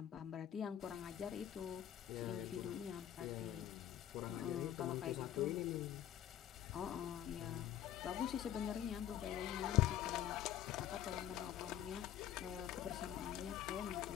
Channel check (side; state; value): right; quieter; 11.2 dB